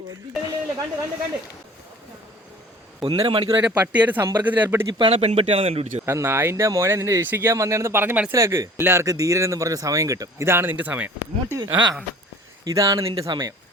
1.5 മണിക്കൂറായിട്ട് പട്ടിയായിട്ട് സമ്പർക്കത്തിൽ ഏർപ്പെട്ട് ഇപ്പാണ് പെൺപട്ടിയാണെന്ന് കണ്ടുപിടിച്ചത്. ആ നായിന്റെ മോനെ നിന്നെ രക്ഷിക്കാൻ വന്നതെന്ന് പറഞ്ഞ് മനസ്സിലാക്ക്. എല്ലാവർക്കും ധീരനെന്ന് പറഞ്ഞ സമയം കിട്ടും. ഇതാണ് നിന്റെ സമയം. ആ ഇതാണ് നിന്റെ സമയം.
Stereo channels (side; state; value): both; normal; correlation 0.47